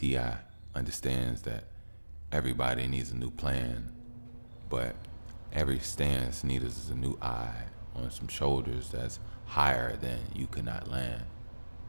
understands that everybody needs a new plan, but every stance needs a new eye on some shoulders that's higher than you could not land.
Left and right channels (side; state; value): both; inverted; correlation -1.00